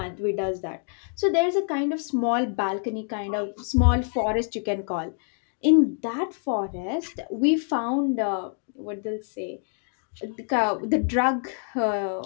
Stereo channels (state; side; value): silent; right; 57 dB below the other